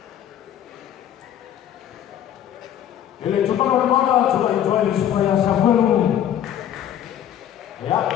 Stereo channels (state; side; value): quieter; right; 10.5 dB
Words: El chupano de mala, chupa y chupa y chupa y Samuel. Ya